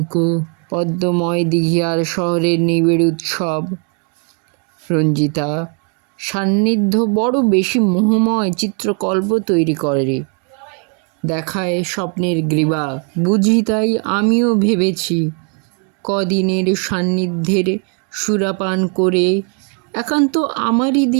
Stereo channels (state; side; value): quieter; left; 39.4 dB